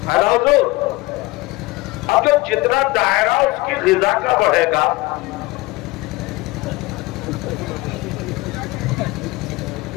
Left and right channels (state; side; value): quieter; right; 21.1 dB